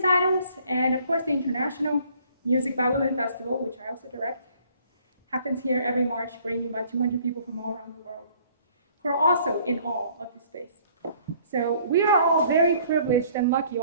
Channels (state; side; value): inverted; both; correlation -0.59